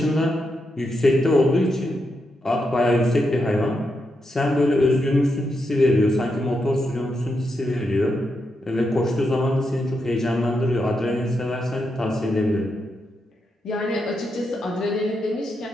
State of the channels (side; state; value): both; normal; correlation 0.84